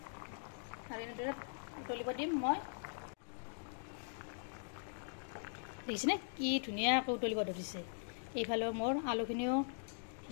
আৰু এনেদৰে উতলিব দিম মই দেখিছেনে কি ধুনীয়াকৈ উতলিব ধৰিছে এইফালে মোৰ আলুখিনিও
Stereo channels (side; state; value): right; silent; digital silence